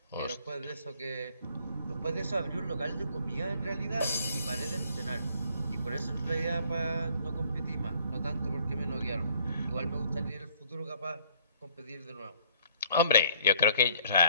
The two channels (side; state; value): both; inverted; correlation -0.61